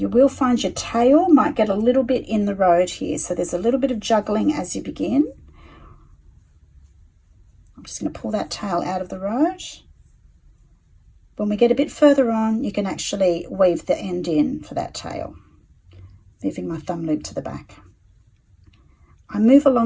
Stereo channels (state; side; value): identical; both; correlation 1.00